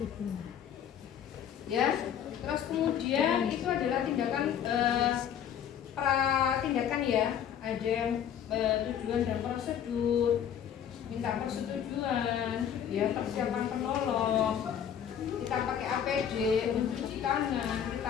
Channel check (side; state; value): right; quieter; 9.0 dB